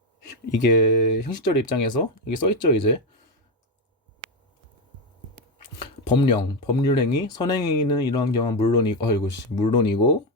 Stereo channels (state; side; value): normal; both; correlation 0.10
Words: 이게 형식적인 입장에서 이게 써있죠. 이제 법률행위, 선행행위는 이러한 경우는 물론이고